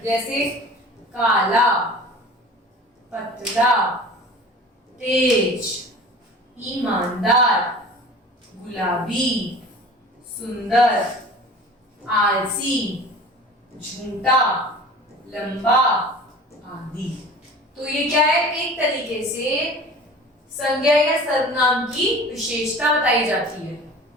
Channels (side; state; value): both; normal; correlation 0.41